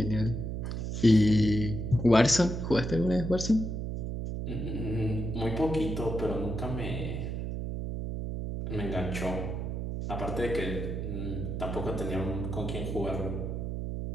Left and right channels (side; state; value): right; noise; hum, 3 dB below the sound